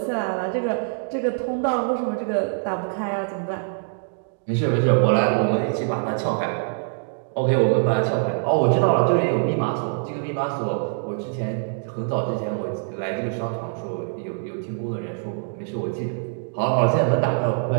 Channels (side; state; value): left; silent; 61 dB below the other